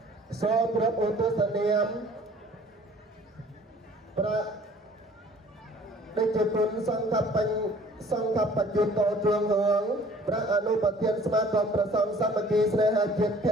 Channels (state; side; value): normal; both; correlation 0.53